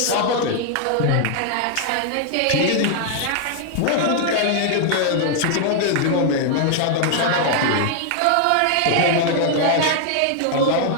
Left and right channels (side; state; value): both; different; correlation 0.00